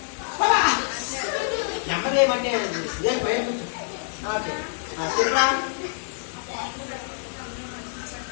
నెమ్మది ఏమంటే భయం కూర్చో. ఓకే, చెప్పరా?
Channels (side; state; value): right; silent; digital silence